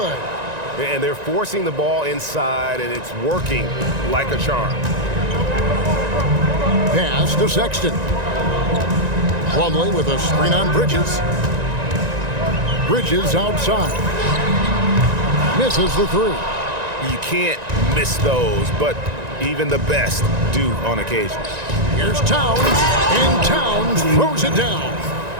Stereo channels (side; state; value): left; late; 1.9 ms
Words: And they're forcing the ball inside, and it's working like a charm. Pass to Sexton. Plumlee with a screen on Bridges. Bridges outside. Misses the 3. You can't miss those, but even the best do on occasion. Here's Towns, and Towns throws it down.